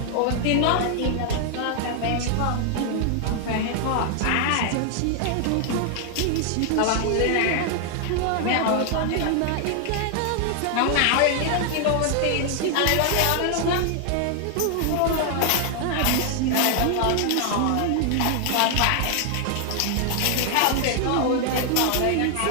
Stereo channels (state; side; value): different; both; correlation 0.00